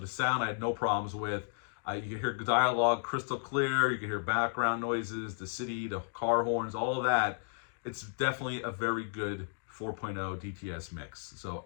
sound I had no problems with. You can hear dialogue crystal clear. You can hear background noises, the city, the car horns, all of that. It's definitely a very good 4.0 DTS mix. So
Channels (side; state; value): right; silent; digital silence